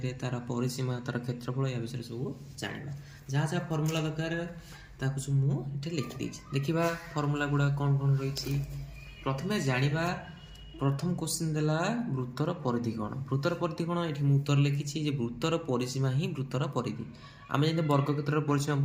तार परिसीमा तार क्षेत्रफल या विषय सब जाना जहाँ जहाँ फर्मूला दरकार सब मुझे लिखिदी देखा फर्मूला गुड़ा कौन कौन रही प्रथम जाना प्रथम क्वेश्चन देला वृत्तर परिधि कौन वृत्तर परिधि कौन ये उत्तर लिखी वृत्तर परिसीमा ही वृत्तर परिधि आम जब वर्गक्षेत्र परिसीमा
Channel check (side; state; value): both; identical; correlation 1.00